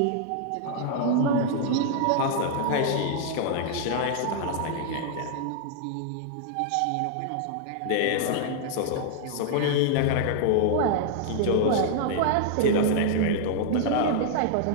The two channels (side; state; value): both; different; correlation -0.01